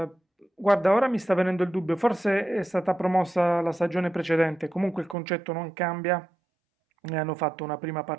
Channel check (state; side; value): drops out; left; at 5.2 s